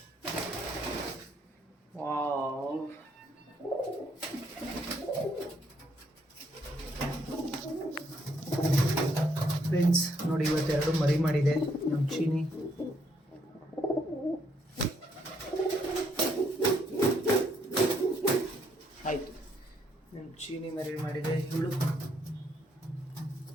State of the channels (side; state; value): both; normal; correlation 0.72